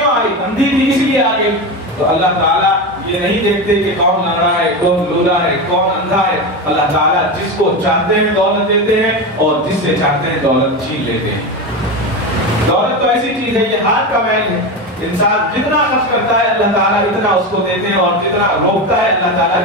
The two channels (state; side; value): normal; both; correlation 0.19